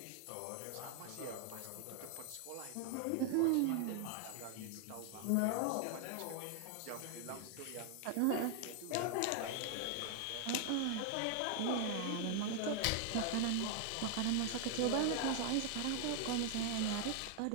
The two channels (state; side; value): different; both; correlation 0.00